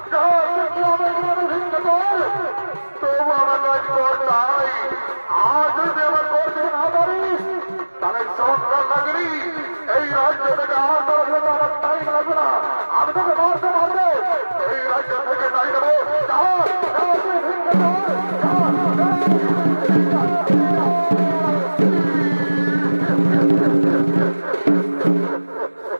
তবু আমার নয় কর তাই। আজ যদি আমার করতে না পারিস তাহলে সংসার লাগলি এই রাজ্য থেকে আমার আমার তাই লাগবে না। আমি তোকে মারতে পারবো, এই রাজ্য থেকে তাই দেবো।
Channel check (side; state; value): both; inverted; correlation -1.00